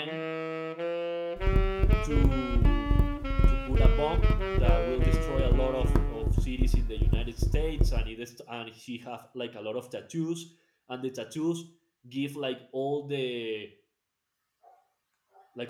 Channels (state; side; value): identical; both; correlation 1.00